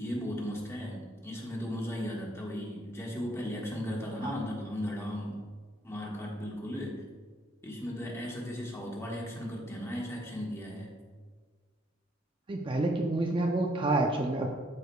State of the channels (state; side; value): normal; both; correlation 0.69